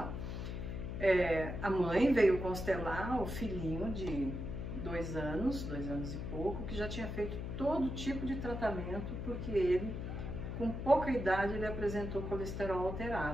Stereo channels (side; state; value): left; noise; hum, 5 dB below the sound